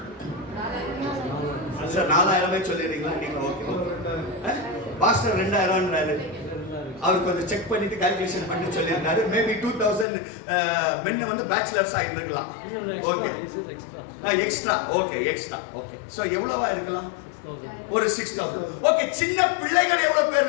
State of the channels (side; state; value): right; drops out; at 10.1 s